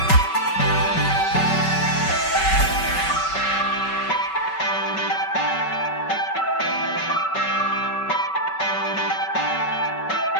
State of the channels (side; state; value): right; late; 5.3 ms